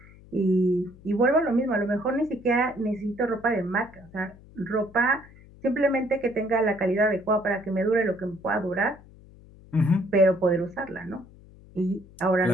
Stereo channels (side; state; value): left; noise; hum, 23 dB below the sound